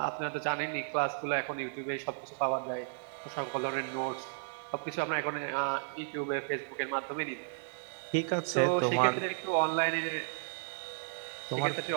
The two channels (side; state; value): left; silent; digital silence